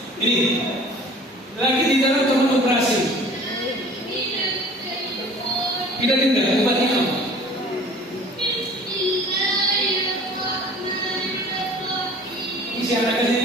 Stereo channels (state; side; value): normal; both; correlation 0.46